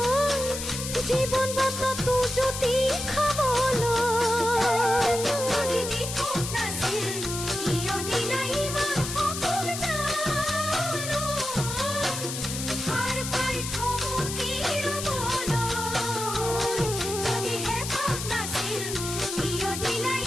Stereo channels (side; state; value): left; noise; hiss, 6 dB below the sound